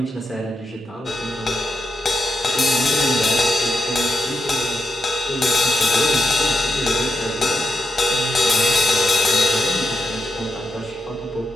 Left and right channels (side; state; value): both; normal; correlation 0.85